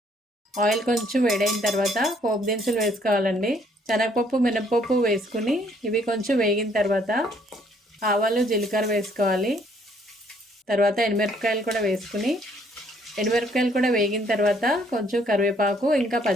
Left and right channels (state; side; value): normal; both; correlation 0.65